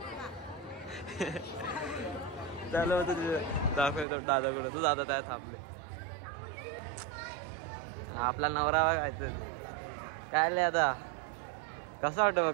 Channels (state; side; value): drops out; left; at 4.0 s